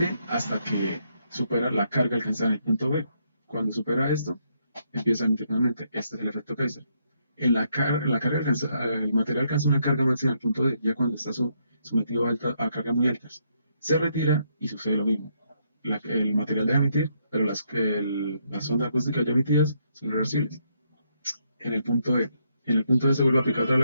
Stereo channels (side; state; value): both; inverted; correlation -0.75